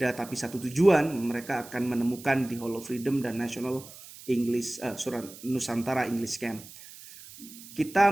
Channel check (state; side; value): noise; right; hiss, 17 dB below the sound